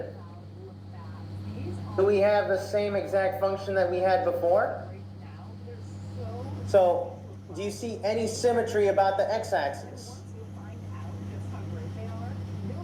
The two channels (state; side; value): identical; both; correlation 1.00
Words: Do we have the same exact function that we had before? So, do you see any symmetry about the x-axis?